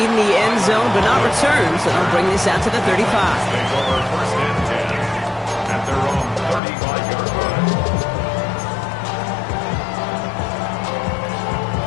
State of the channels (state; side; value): drops out; right; at 6.6 s